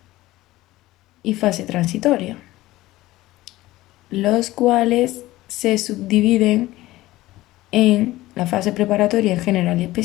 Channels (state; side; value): quieter; right; 17.3 dB